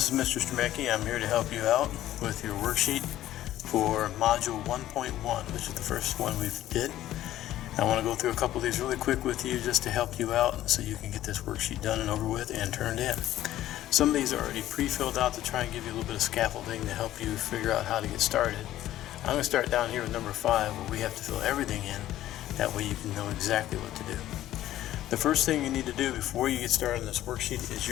Mr. Stremecki. I'm here to help you out with your worksheet for Module 1.1, which is the first one we did. I want to go through a couple of these really quick with you just to help you out so you can get this worksheet done and over with and turned in. Some of these are already pre-filled out to try and give you a little bit of scaffolding to help you figure out how to get started. I'm going to start down here with number 5 where we have to fill everything in. That way you can know exactly what to do. The first thing you need to do before you get started on this worksheet is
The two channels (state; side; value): quieter; right; 13.7 dB